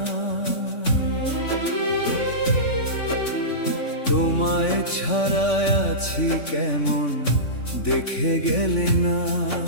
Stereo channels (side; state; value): right; late; 3.5 ms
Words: তোমায় ছাড়া আছি কেমন দেখে গেলে না।